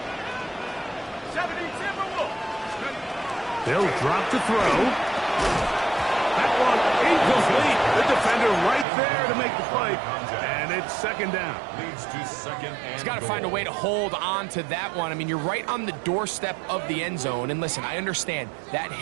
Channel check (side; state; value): left; drops out; at 8.8 s